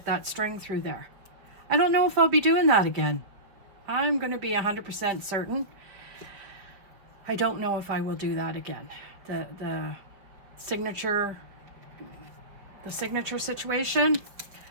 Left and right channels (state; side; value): late; left; 5.3 ms